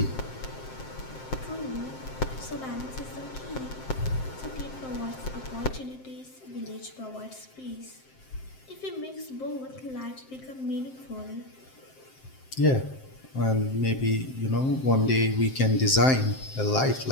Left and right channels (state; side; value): late; right; 7.6 ms